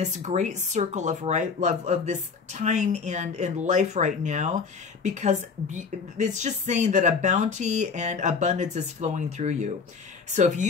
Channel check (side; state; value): right; quieter; 5.3 dB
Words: great circle of this time and in life right now, because it's just saying that a bounty and abundance is flowing through you. So if